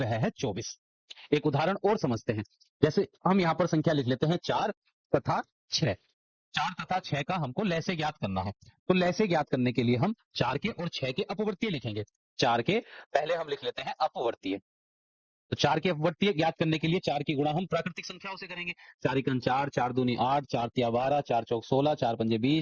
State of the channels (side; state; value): both; identical; correlation 1.00